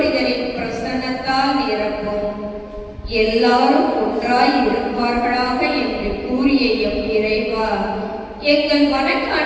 பிரசன்னத்தால் நிரப்பும். எல்லாரும் ஒன்றாய் இருப்பார்களாக என்று கூறிய எம் இறைவா, எங்கள்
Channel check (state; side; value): identical; both; correlation 1.00